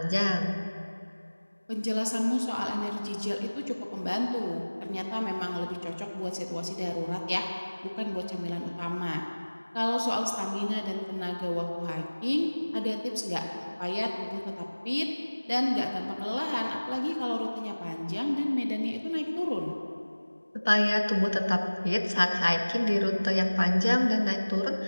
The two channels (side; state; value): both; inverted; correlation -1.00